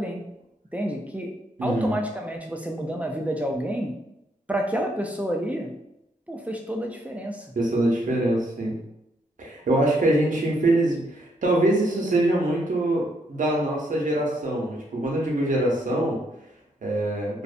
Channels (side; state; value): both; normal; correlation 0.73